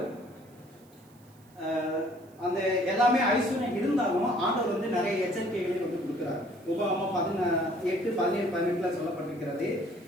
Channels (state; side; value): noise; right; hiss, 30 dB below the sound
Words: அந்த எல்லாமே ஐஸ்வர்யம் இருந்தாலும் ஆண்டவர் வந்து நிறைய எச்சரிக்கைகளை வந்து கொடுக்கிறார். உபாகமம் 18, 17, 18 சொல்லப்பட்டிருக்கிறது,